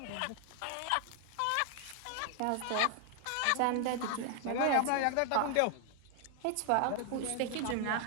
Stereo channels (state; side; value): different; both; correlation 0.00